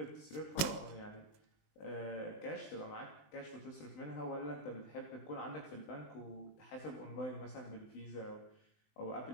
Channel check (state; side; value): late; right; 20 ms